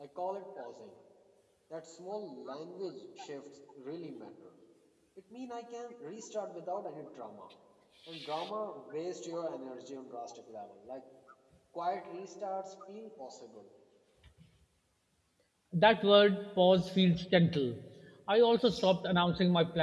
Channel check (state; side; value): identical; both; correlation 1.00